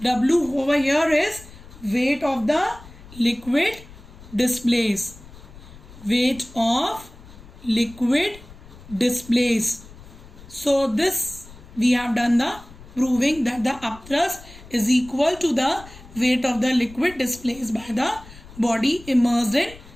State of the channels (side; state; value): left; noise; rumble, 19 dB below the sound